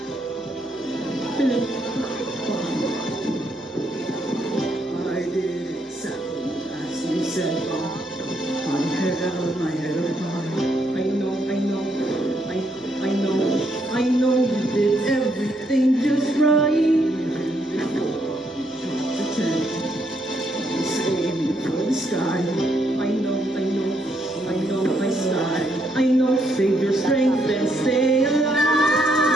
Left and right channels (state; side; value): normal; both; correlation 0.75